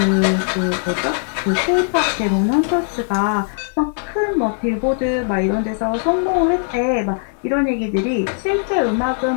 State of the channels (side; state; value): right; silent; 66 dB below the other